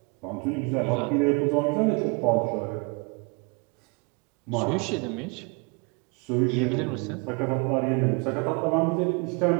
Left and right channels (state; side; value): quieter; left; 31.7 dB